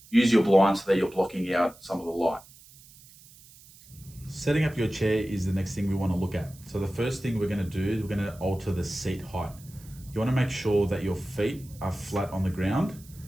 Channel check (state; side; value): noise; right; hiss, 23 dB below the sound